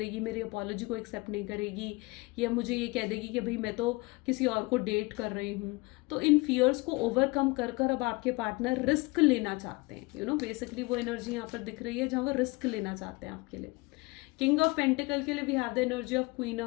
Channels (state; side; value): quieter; right; 25.1 dB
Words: मेरी अपॉलॉजी को एक्सेप्ट नहीं करेगी, या मुझे ये कह देगी कि भाई मैं तो किसी और को डेट कर रही हूँ। तो इन फियर्स को ओवरकम कर कर अब आपके पार्टनर रिस्क लेना चाहते हैं, बेसिकली वो एनर्जी यहाँ पर दिख रही है जहाँ वो रिस्क लेना चाहते हैं आपके लिए। किंग ऑफ पेंटिकल के लिए we have the energy of queen